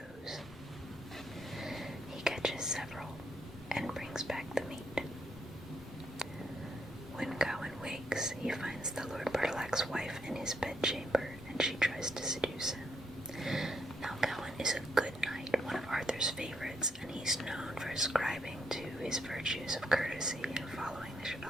He catches several and brings back the meat. When Gawain wakes, he finds the Lord Bertilac's wife in his bedchamber, and she tries to seduce him. Now Gawain is a good knight, one of Arthur's favorites, and he's known for ascribing to his virtues of courtesy and following the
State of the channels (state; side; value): normal; both; correlation 0.76